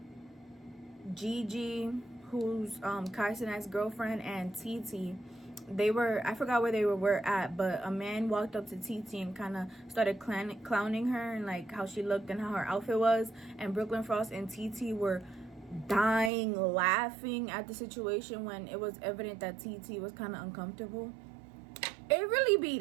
Gigi, who's Kai Cenat's girlfriend, and TT. They were, I forgot where they were at, but a man walked up to TT and kind of started clowning her and like how she looked and how her outfit was, and Brooklyn Frost and TT were dying laughing at the situation when it was evident that TT was kind of uncomfortable. It really be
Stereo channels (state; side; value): drops out; left; at 16.3 s